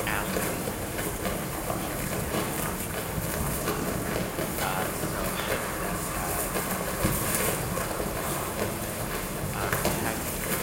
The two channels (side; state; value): both; identical; correlation 1.00